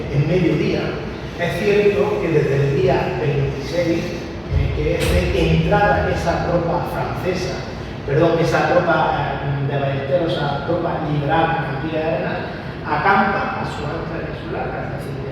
en mediodía. Es cierto que desde el día 26, que es de entrada esa tropa francesa, esa tropa de Ballesteros, esa tropa liberal de Campilla de Arenas, acampa a su ancla insular. Es decir,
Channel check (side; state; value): both; identical; correlation 1.00